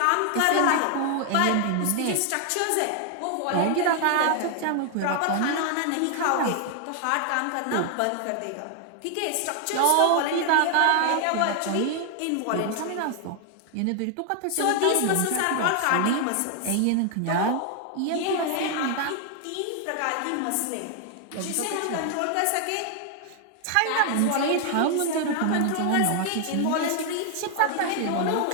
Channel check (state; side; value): different; both; correlation 0.00